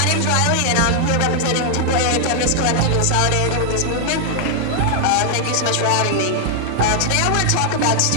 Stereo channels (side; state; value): both; different; correlation 0.00